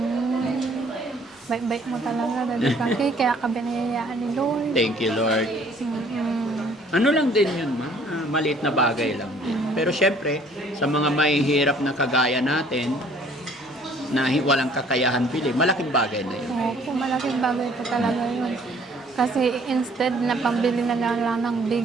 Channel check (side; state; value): both; normal; correlation 0.58